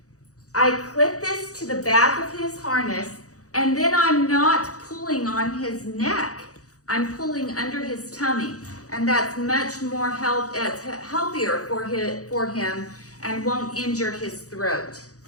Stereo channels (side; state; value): right; late; 0.66 ms